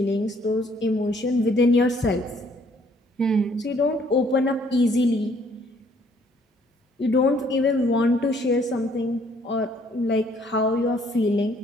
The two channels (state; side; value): normal; both; correlation 0.63